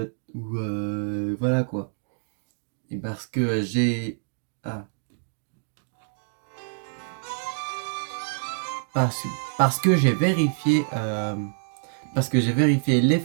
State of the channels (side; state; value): left; silent; digital silence